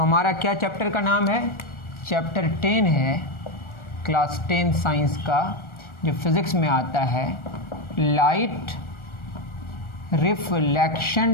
हमारा क्या चैप्टर का नाम है? चैप्टर 10 है क्लास 10 साइंस का, जो फिज़िक्स में आता है, लाइट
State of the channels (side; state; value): right; late; 1.4 ms